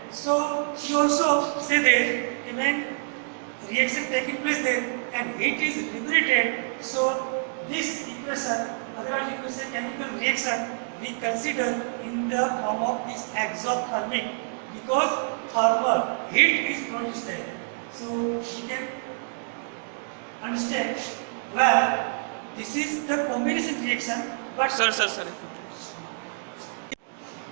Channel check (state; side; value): silent; left; digital silence